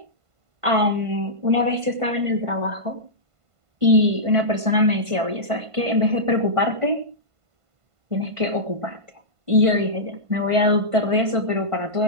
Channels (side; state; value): left; late; 1.5 ms